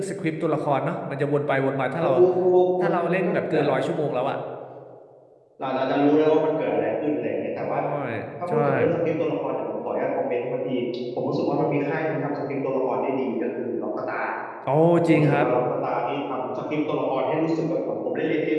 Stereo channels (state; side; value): identical; both; correlation 1.00